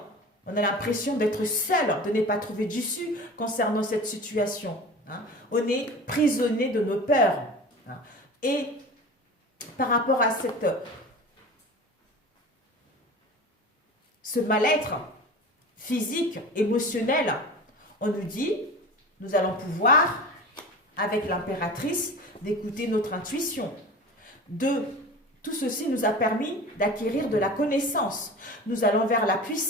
On a l'impression d'être seul, de ne pas trouver d'issue concernant cette situation. hein. On est prisonnier de nos peurs. Hein. Et par rapport à ce mal-être physique, émotionnel, on nous dit, nous allons pouvoir, avec l'impératrice, d'écouter notre intuition. Tout ceci nous a permis d'acquérir de la connaissance. Nous allons vers la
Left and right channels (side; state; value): both; normal; correlation 0.35